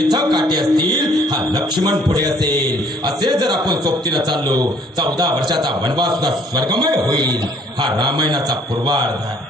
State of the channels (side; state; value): both; normal; correlation 0.60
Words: काटे असतील हा लक्ष्मण पुढे असेल. असे जर आपण सोबतीनं चाललो 14 वर्षाचा वनवास सुद्धा स्वर्गमय होईल. हा रामायणाचा पूर्वार्ध आहे.